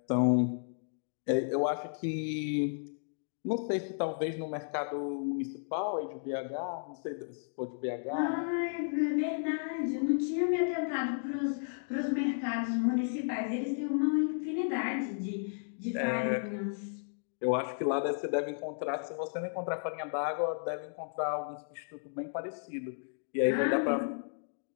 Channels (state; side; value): silent; right; digital silence